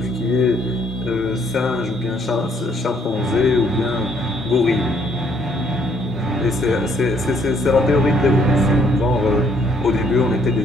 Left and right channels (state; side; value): normal; both; correlation 0.67